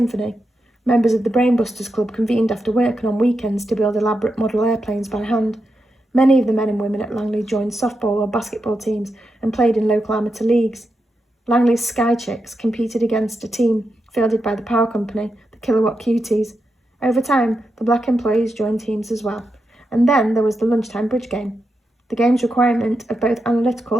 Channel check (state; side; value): normal; both; correlation 0.87